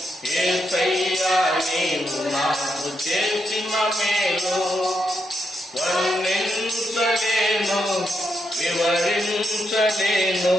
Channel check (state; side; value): normal; both; correlation 0.82